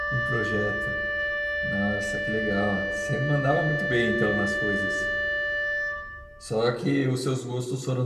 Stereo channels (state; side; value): identical; both; correlation 1.00